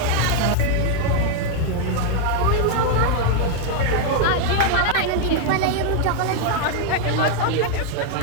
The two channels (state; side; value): different; both; correlation 0.00